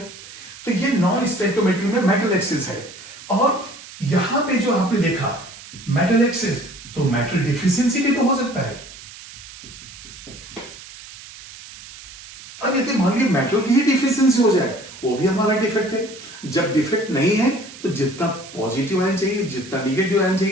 तो ये नॉन स्टोइकोमेट्री में मेटल एक्सेस है। और यहां पे जो आपने देखा मेटल एक्सेस, तो मेटल डिफिशियंसी भी तो हो सकता है। अब यदि मान लीजिए मेटल की ही डिफिशियंसी हो जाए, वो भी हमारा डिफेक्ट है। जब डिफेक्ट नहीं है तो जितना पॉजिटिव आयन चाहिए, जितना निगेटिव आयन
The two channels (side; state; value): right; noise; hiss, 16 dB below the sound